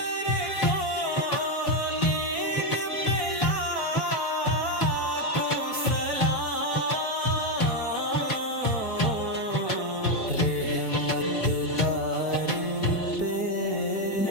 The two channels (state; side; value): late; right; 4.5 ms